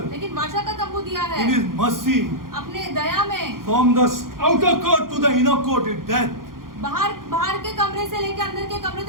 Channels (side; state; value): left; late; 0.91 ms